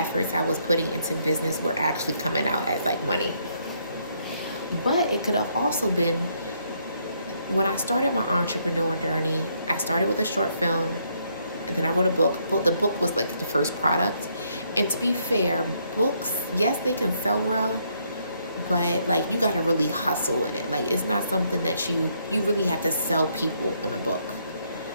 I was putting into business were actually coming out as like money. But it could have also been when I started my entrepreneur journey. I started with a short film, and then I wrote a book. The book was like the first product. And to be fair, books, yes, they can sell well, but like you gotta really hustle with it. Like it's not something that you really have to sell people in a book.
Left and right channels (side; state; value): both; inverted; correlation -0.72